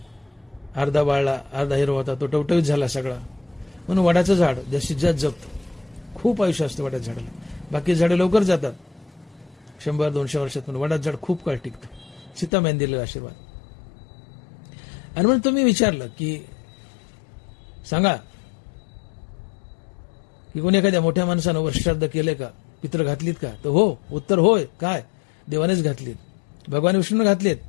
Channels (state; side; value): drops out; right; at 12.5 s